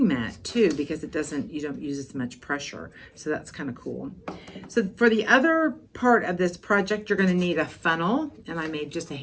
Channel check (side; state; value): both; identical; correlation 1.00